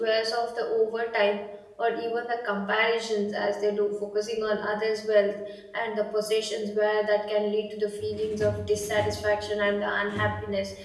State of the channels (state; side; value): identical; both; correlation 1.00